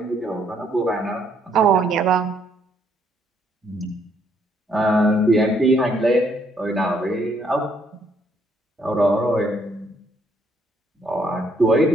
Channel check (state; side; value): normal; both; correlation 0.69